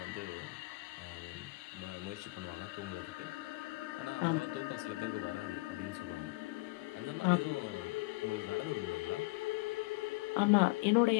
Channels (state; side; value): quieter; right; 23.9 dB